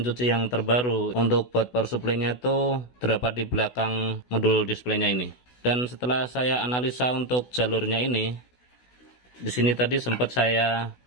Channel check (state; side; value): late; right; 16 ms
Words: cuci yang terbaru, untuk board power supply-nya tuh terdapat di belakang modul displaynya ini. Dan setelah saya analisa untuk jalurnya ini, di sini tadi sempat saya